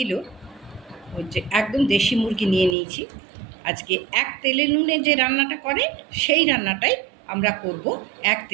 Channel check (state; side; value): drops out; left; at 2.8 s